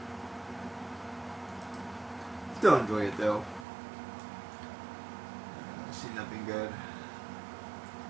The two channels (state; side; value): drops out; left; at 3.7 s